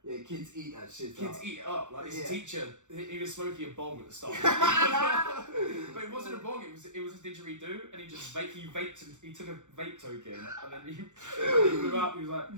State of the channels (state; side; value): late; left; 0.85 ms